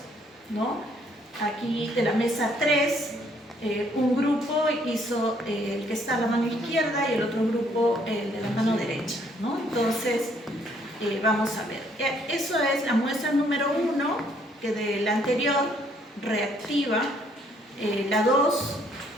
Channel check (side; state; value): both; normal; correlation 0.66